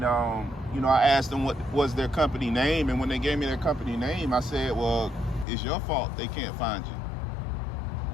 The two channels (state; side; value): drops out; right; at 5.5 s